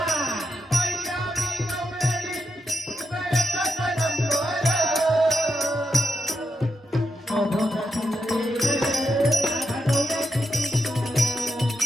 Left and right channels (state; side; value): normal; both; correlation 0.85